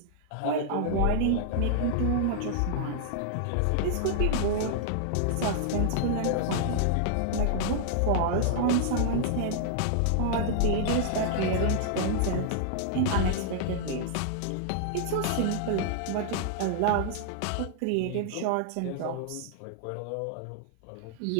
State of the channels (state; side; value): different; both; correlation -0.01